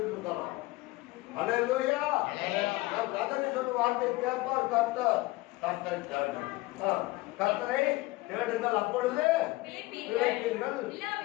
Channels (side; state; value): right; quieter; 20.8 dB